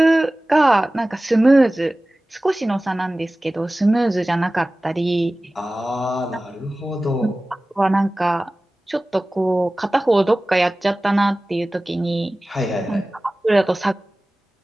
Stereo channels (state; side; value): normal; both; correlation 0.97